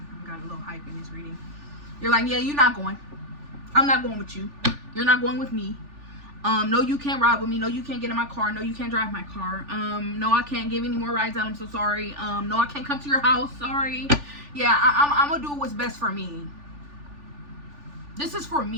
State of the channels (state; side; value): late; left; 3.4 ms